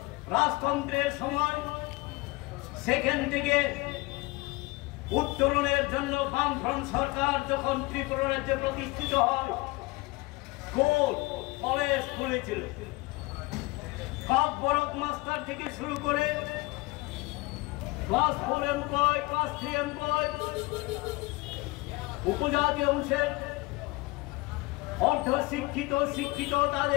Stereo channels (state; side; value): quieter; right; 23.3 dB